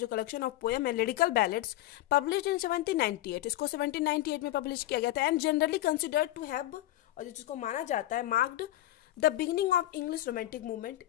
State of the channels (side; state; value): right; quieter; 15.1 dB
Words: कलेक्शन ऑफ पोएम है लिरिकल बैलेड्स, पब्लिश इन 1798, इसको 1798 में पब्लिश किया गया था, and generally considered to have, और जिसको माना जाता है, marked the beginning of English romantic movement,